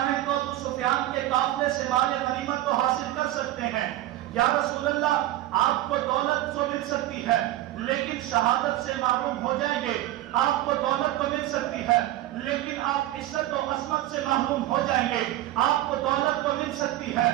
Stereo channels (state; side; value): quieter; left; 14.9 dB